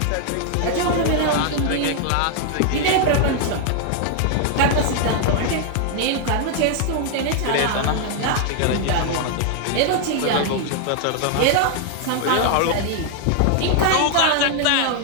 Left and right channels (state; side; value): different; both; correlation 0.00